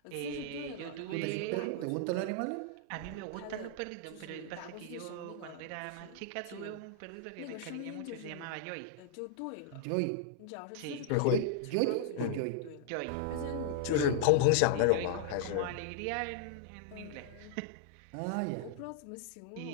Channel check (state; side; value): different; both; correlation -0.01